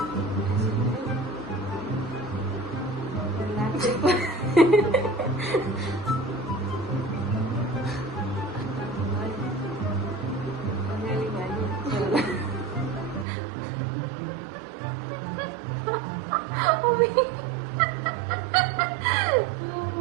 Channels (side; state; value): left; drops out; at 13.2 s